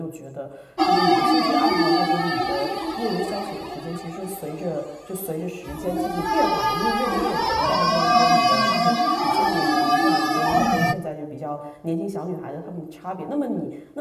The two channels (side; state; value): both; identical; correlation 1.00